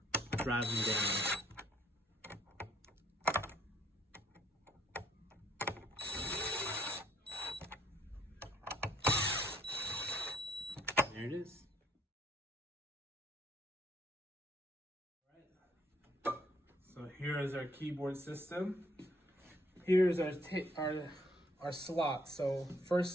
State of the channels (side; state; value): both; normal; correlation 0.66